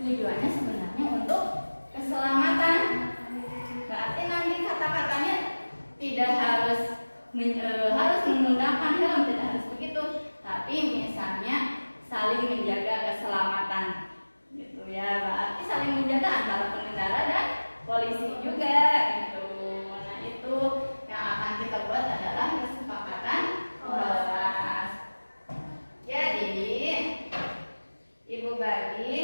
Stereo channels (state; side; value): inverted; both; correlation -1.00